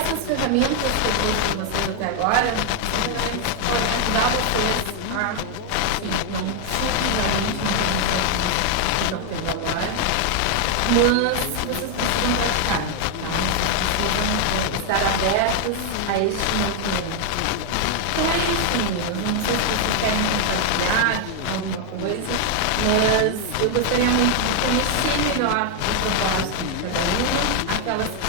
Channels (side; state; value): both; different; correlation 0.00